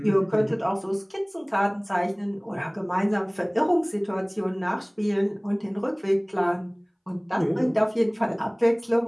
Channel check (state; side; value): identical; both; correlation 1.00